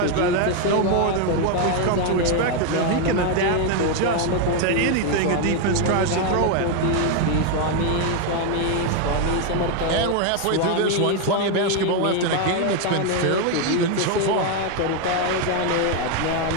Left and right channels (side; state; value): both; different; correlation 0.01